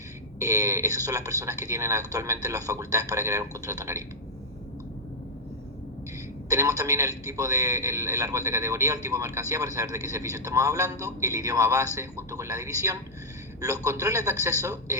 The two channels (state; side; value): normal; both; correlation -0.08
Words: Esas son las personas que tienen actualmente las facultades para crear un contrato en Ariba. Tenemos también el tipo de el árbol de categoría, el tipo de mercancía para saber de qué servicio estamos hablando, el idioma base junto con la división, los controles de acceso,